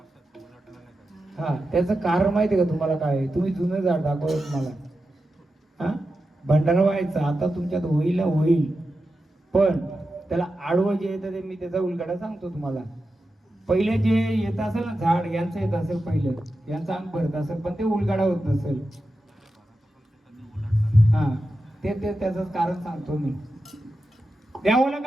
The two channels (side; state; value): both; normal; correlation 0.91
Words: हा, त्याचं कारण माहितीये का तुम्हाला? काय तुम्ही जुनं झाड दाखवलं तुम्हाला. हा, भंडारा व्हायचा आता तुमच्यात होईल पण त्याला आडवं जे येतं ते मी त्याचा उलगडा सांगतो तुम्हाला. पहिले जे येत असेल ना झाड यांचं येत असेल पहिलं, यांचं अंग भरत असेल पण ते उलगाडा होत नसेल. हा ते त्याचं कारण सांगतो मी. द्यावं